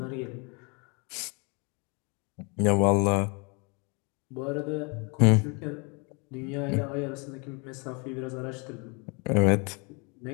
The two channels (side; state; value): right; quieter; 32.1 dB